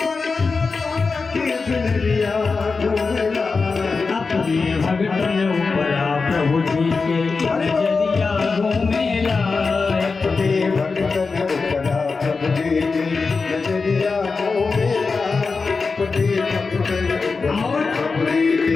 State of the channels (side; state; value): right; quieter; 4.4 dB